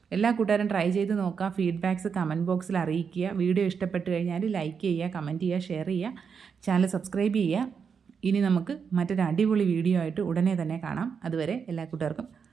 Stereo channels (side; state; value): left; quieter; 6.4 dB